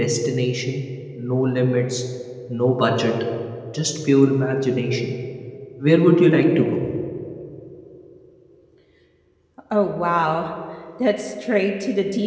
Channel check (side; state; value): both; identical; correlation 1.00